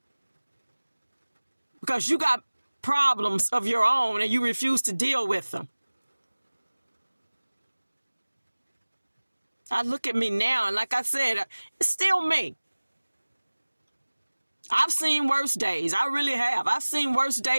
because you got problems of your own and you refuse to deal with them. I look at me now, and like I said, it's still me. I've seen worse days. I really have. I've seen worse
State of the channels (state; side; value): inverted; both; correlation -1.00